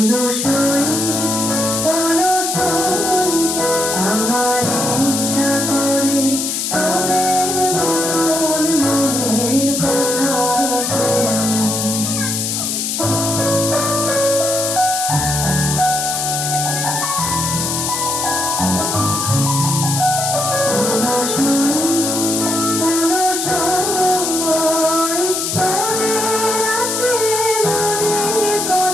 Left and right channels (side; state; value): left; noise; hiss, 1 dB below the sound